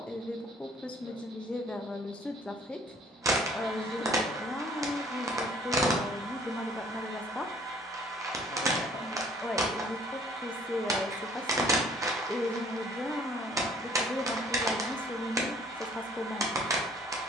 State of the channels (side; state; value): both; normal; correlation 0.57